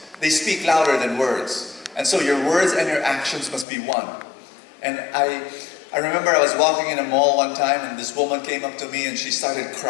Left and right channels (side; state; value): right; drops out; at 3.7 s